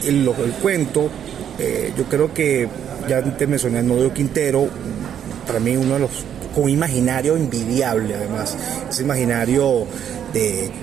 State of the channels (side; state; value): left; quieter; 9.3 dB